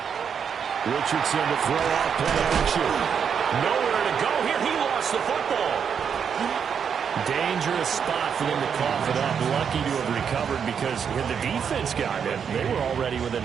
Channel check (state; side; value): quieter; left; 7.2 dB